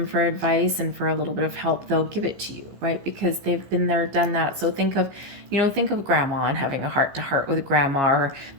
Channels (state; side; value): late; left; 15 ms